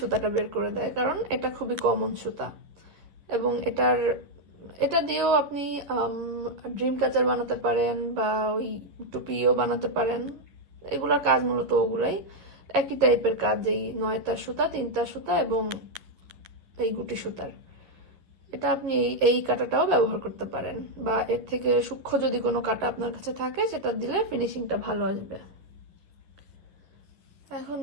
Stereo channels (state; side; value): late; left; 11 ms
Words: বের করে দেয়, কারণ এটা খুবই কমন সুতা। এবং এটা দিয়েও আপনি ড্রিম ক্যাচার বানাতে পারেন বা ওই টুপিও বানাতে পারেন। এগুলোর কাজ মূলত ওগুলাই, একই টাইপের কাজ, এই 9 তার সুতা, 3 তার সুতা এবং এই গুটি সুতার। এটা আপনি এই কাঁটাটাও ব্যবহার করতে পারেন, বা এর থেকে সূক্ষ্ম যদি কোনো কাঁটা আপনার কাছে থাকে সেটা দিলে ফিনিশিংটা ভালো আসবে। এখন